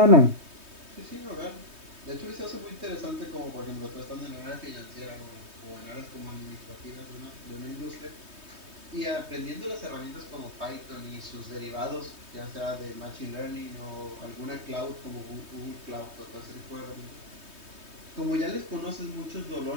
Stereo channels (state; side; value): late; left; 3.2 ms